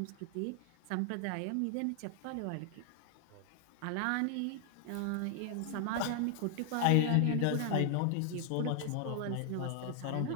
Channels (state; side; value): different; both; correlation 0.00